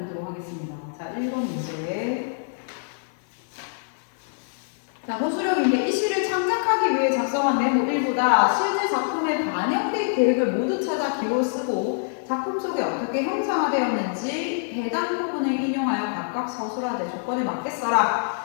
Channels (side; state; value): right; silent; digital silence